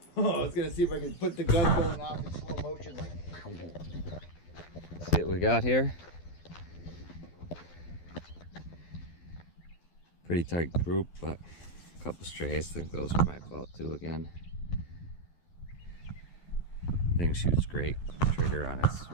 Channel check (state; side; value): late; right; 12 ms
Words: I was gonna see if I could put the gun going off in slow motion like. See what we got here. Pretty tight group, but a couple strays. I think those are my fault too again. Thing shoots great. Trigger on it's